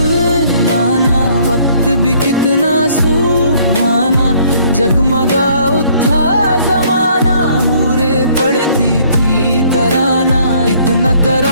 लाना, वक्त भी कितना सुहाना, जगमगा उठा जमाना, हूरे पड़ती थी तराना। इतना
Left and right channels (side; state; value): both; inverted; correlation -0.62